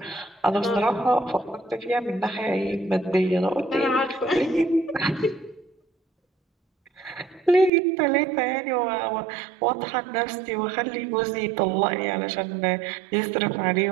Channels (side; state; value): left; drops out; at 7.7 s